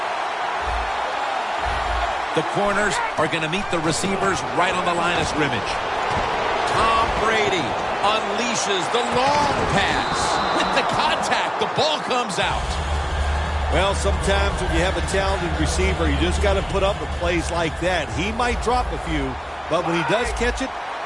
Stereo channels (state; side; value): identical; both; correlation 1.00